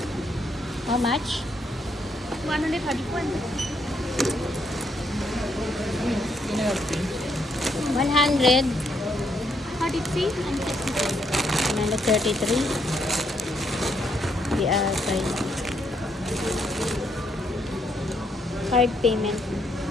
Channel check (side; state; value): both; normal; correlation 0.74